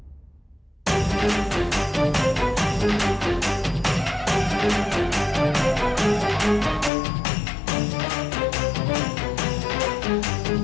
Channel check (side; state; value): right; drops out; at 6.9 s